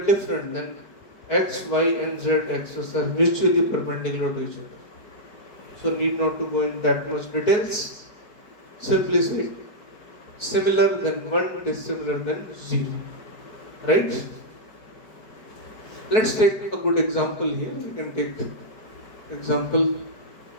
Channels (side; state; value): right; late; 4.6 ms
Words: different, then x, y and z axes are mutually perpendicular to each other. So need not to go in that much details. Simply say similar than 1, dissimilar than 0. Right? Let's take a good example here. We can take example,